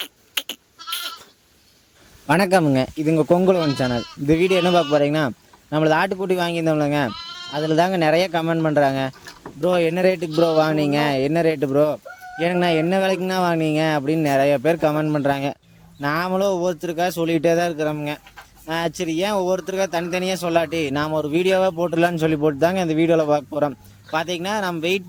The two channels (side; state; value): both; identical; correlation 1.00